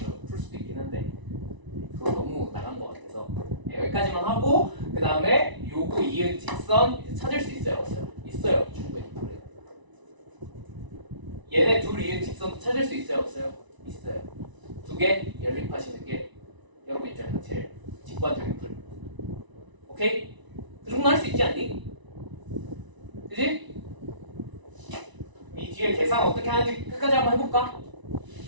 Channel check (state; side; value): late; left; 1.0 ms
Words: 풀 수도 있긴 한데 그거 너무 나간 것 같아서 여기까지만 하고 그 다음에 요거 이은 직선 이제 찾을 수 있어요, 없어요? 있어요, 충분히. 얘네 둘 이은 직선 찾을 수 있어요, 없어요? 있어요. 두 개 연립하시는 게 여러분 입장에서 제일 직관적인 풀. 오케이? 그 정도 할 수 있지 않니? 그지? 이 뒤에 계산 어떻게 하는지 끝까지 한번 해볼까?